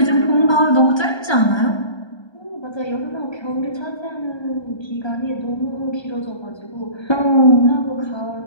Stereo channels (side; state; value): right; late; 1.3 ms